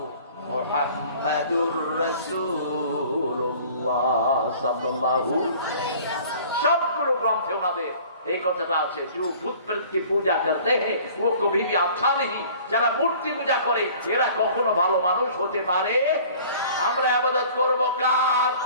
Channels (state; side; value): inverted; both; correlation -0.49